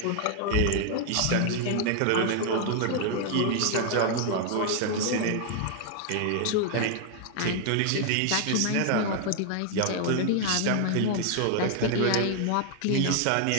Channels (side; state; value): both; different; correlation 0.00